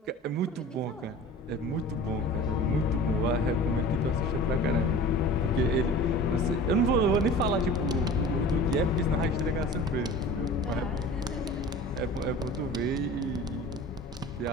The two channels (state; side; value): normal; both; correlation 0.40